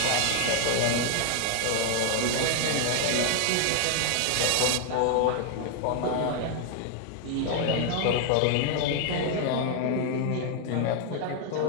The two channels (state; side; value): different; both; correlation 0.00